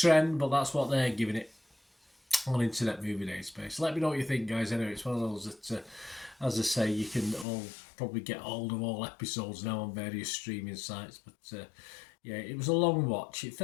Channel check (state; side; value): drops out; right; at 7.5 s